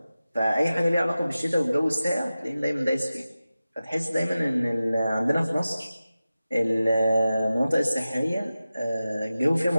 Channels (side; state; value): both; inverted; correlation -0.95